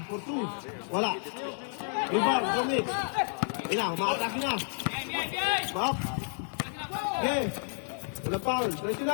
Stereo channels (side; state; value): right; silent; 57 dB below the other